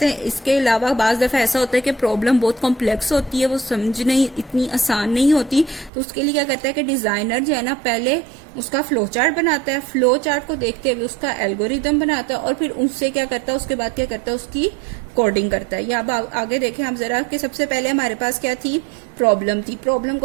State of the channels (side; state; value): left; drops out; at 5.9 s